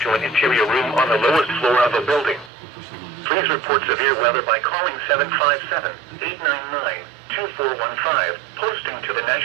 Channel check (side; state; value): left; drops out; at 2.5 s